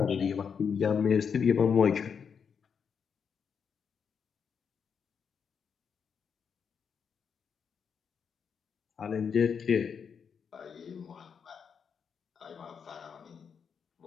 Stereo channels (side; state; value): right; quieter; 6.6 dB